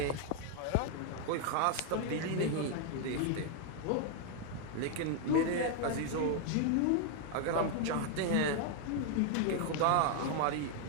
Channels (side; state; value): both; different; correlation 0.00